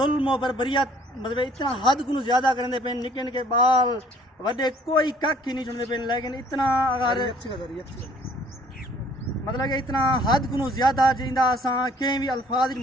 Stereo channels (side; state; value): both; normal; correlation 0.58